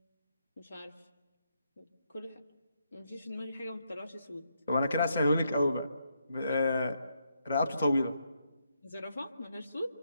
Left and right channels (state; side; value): inverted; both; correlation -0.79